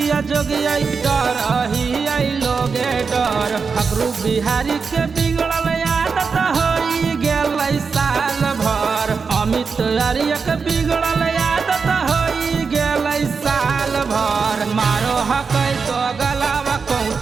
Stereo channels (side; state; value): left; quieter; 5.2 dB